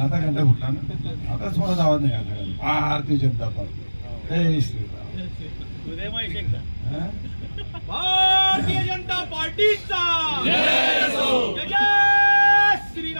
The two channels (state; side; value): inverted; both; correlation -1.00